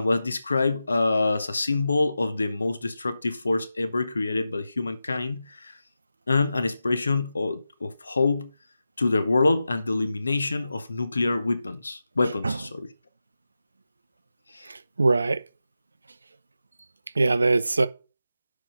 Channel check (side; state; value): both; inverted; correlation -0.91